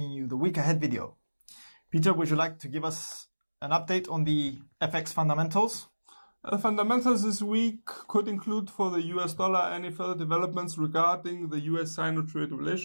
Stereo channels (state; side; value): inverted; both; correlation -1.00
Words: you the week ahead video. Peter, would you like to give us an update on the FX fundamentals? The fundamentals this week could include for the US dollar any further developments regarding the US-Sino trade